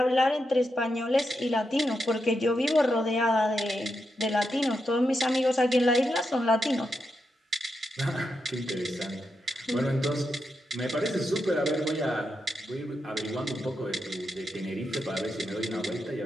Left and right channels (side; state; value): both; normal; correlation 0.85